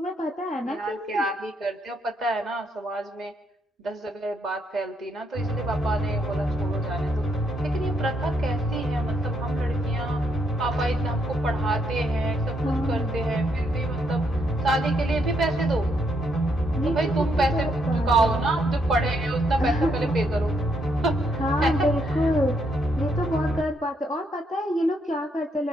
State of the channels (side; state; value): both; normal; correlation 0.75